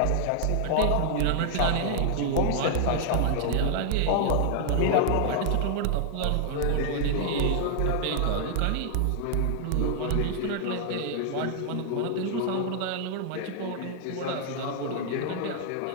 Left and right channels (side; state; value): both; different; correlation 0.00